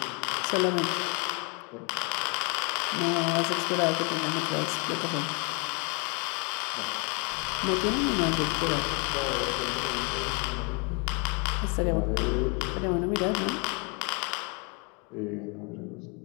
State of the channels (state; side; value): quieter; right; 33.5 dB